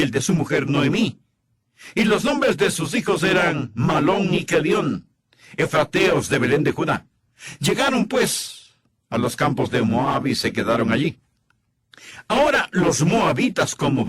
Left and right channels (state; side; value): identical; both; correlation 1.00